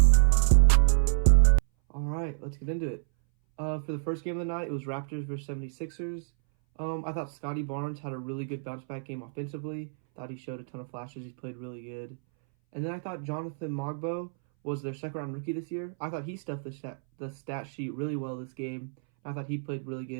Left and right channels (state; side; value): silent; left; 59 dB below the other